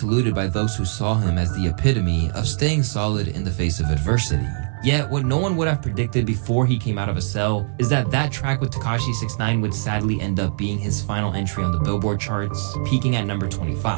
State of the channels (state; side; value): silent; left; 64 dB below the other